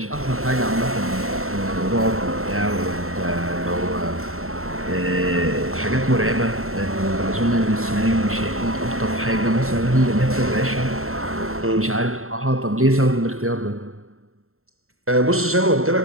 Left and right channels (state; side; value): late; left; 0.62 ms